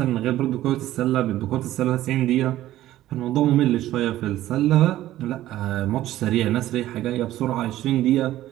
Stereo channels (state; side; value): quieter; left; 14.3 dB